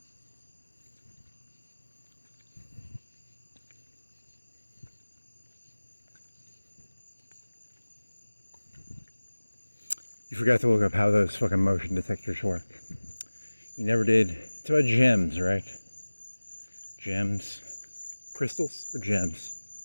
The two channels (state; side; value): inverted; both; correlation -1.00